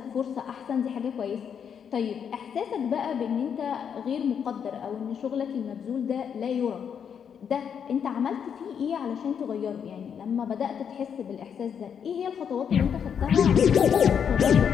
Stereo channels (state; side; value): quieter; right; 7.7 dB